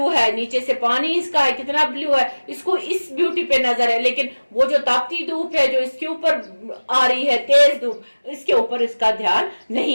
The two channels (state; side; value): inverted; both; correlation -1.00